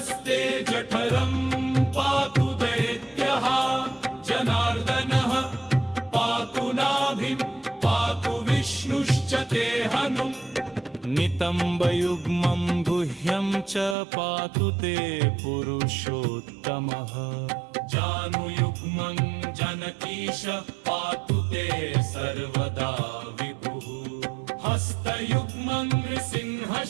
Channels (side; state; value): left; drops out; at 14.0 s